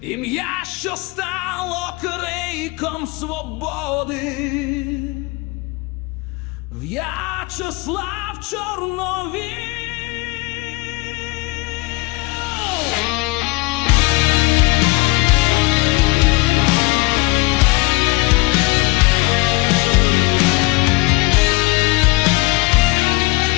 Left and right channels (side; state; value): right; quieter; 24.3 dB